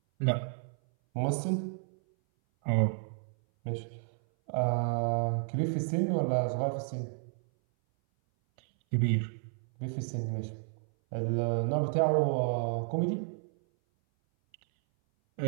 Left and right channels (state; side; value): silent; left; 57 dB below the other